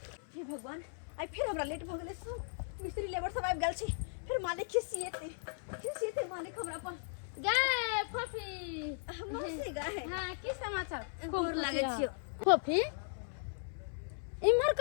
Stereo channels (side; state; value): right; silent; 53 dB below the other